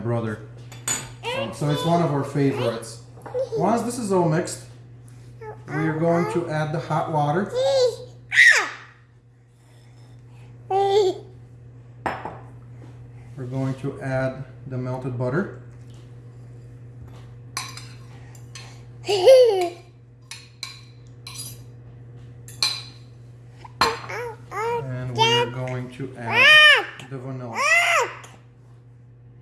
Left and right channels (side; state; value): both; identical; correlation 1.00